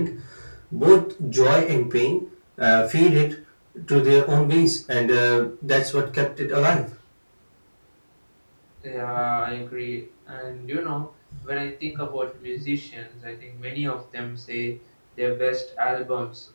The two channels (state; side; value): inverted; both; correlation -1.00